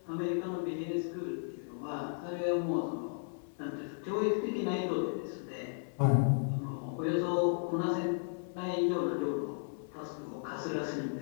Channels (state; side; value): silent; right; 55 dB below the other